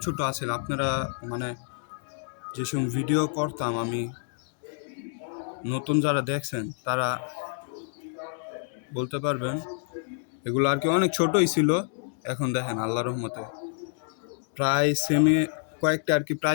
ছোট আছে। আপনারা মানে যেসব ভিডিও করতাম আমি, নতুন যারা দেখছেন তারা বলতে পারবেন, এগুলো আর কি অনেক ছোটই ছিল। এখন দেখেন আল্লাহর রহমতে প্রায় সেমি, কয়েকটা আর কি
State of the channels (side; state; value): right; silent; digital silence